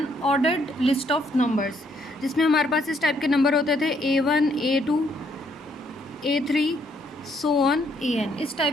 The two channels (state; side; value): normal; both; correlation 0.70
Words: ordered list of numbers जिसमें हमारे पास इस टाइप के नंबर होते थे A1, A2, A3 so on AN. इस